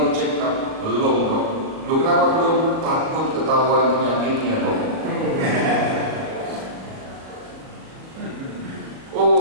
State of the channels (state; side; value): late; left; 37 ms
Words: check up? Belum dok. Lu kenapa belum? Takut ketahuan penyakitnya dok.